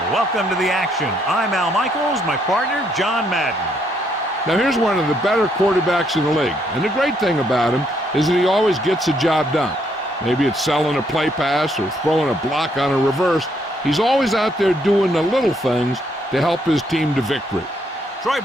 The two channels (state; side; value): normal; both; correlation 0.72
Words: Welcome to the action. I'm Al Michaels, my partner, John Madden. Now, here's one of the better quarterbacks in the league. And the great thing about him is that he always gets the job done. Maybe it's selling a play pass or throwing a block on a reverse. He's always out there doing the little things to help his team to victory. Troy